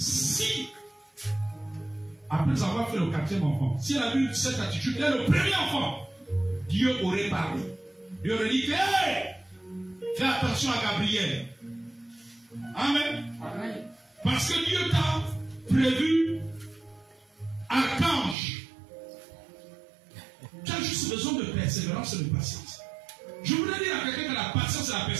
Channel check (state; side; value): drops out; left; at 18.4 s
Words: après avoir fait le 4e enfant, si elle a eu cette attitude, dès le premier enfant, Dieu aurait parlé. Dieu aurait dit, hey, fais attention à Gabriel. Amen. Amen. Parce que Dieu t'a prévu archange. Tu as juste besoin de persévérance et de patience. Je voudrais dire à quelqu'un que la patience et la